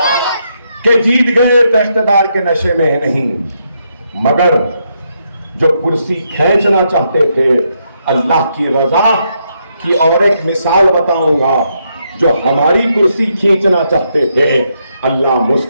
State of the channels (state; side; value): inverted; both; correlation -0.78